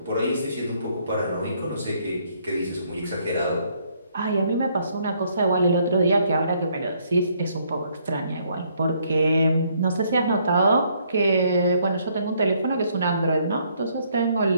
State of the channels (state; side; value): inverted; both; correlation -0.68